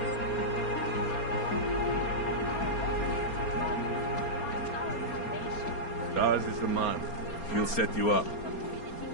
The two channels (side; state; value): right; late; 4.3 ms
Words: Stars is the man. He'll set you up.